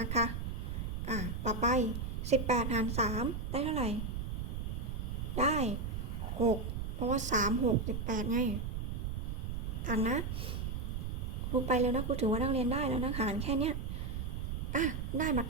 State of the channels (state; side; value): noise; right; rumble, 3 dB below the sound